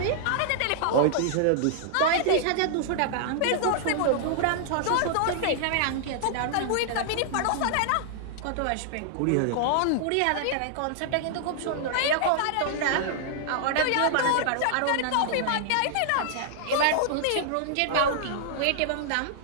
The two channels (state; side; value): different; both; correlation -0.01